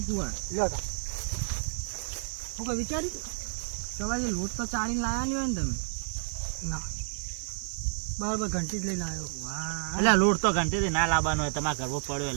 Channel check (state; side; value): silent; left; digital silence